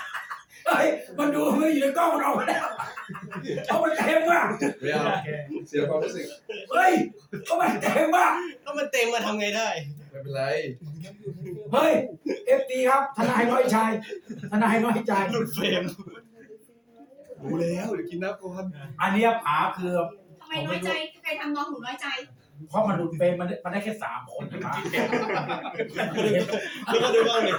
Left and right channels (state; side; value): identical; both; correlation 1.00